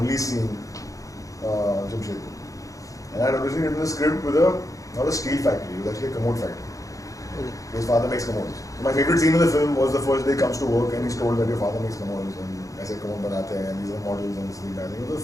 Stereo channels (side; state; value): right; late; 0.16 ms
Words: seeing Jamshedpur. And I had originally written the script with not a steel factory, it was actually a commode factory. Okay. His father makes commodes. So my favorite scene in the film was the first day he comes to work and he's told that your father makes commodes, and I said commode banate hain, and these are models and this thing. I think it